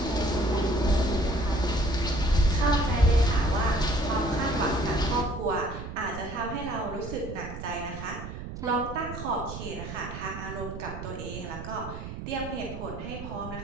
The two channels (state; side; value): noise; right; rumble, 9 dB below the sound